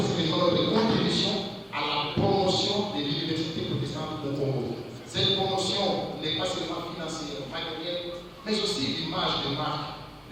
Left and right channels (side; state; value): both; identical; correlation 1.00